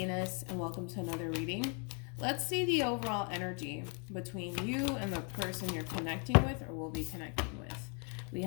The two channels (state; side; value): quieter; right; 38.2 dB